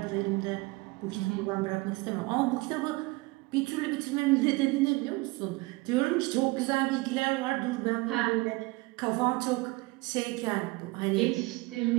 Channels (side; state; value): left; quieter; 23.5 dB